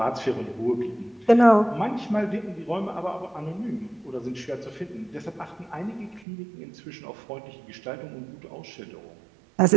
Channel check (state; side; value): drops out; left; at 6.2 s